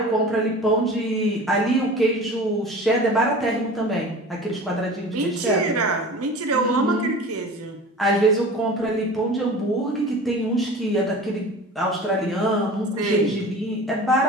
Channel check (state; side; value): normal; both; correlation 0.38